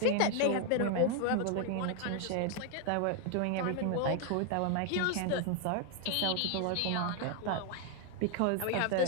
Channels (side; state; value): both; different; correlation 0.00